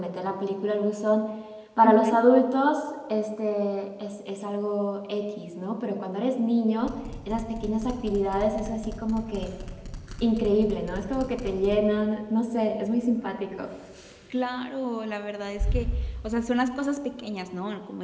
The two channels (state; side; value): identical; both; correlation 1.00